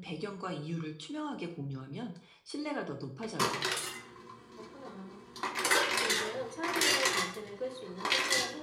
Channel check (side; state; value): both; identical; correlation 1.00